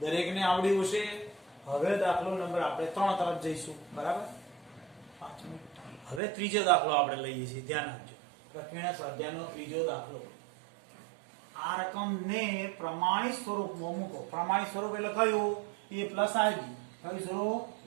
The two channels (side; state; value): left; drops out; at 6.2 s